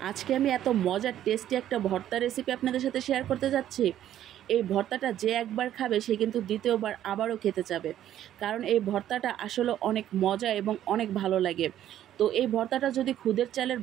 আজকে আমি এত মজার টেস্টি একটা ভর্তা রেসিপি আপনাদের সাথে শেয়ার করতে যাচ্ছি। এই ভর্তাটা যে একবার খাবে সে কিন্তু দ্বিতীয়বার আবারও খেতে যাবে, কারণ এই ভর্তাটা আসলে অনেক মজা এবং অনেক ভালো লাগে। তো এই ভর্তাটা যদি খুদের চালের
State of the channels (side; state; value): left; quieter; 11.7 dB